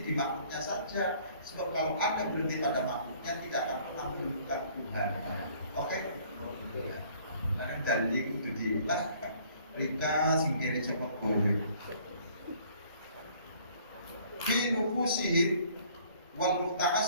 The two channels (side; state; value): both; inverted; correlation -0.57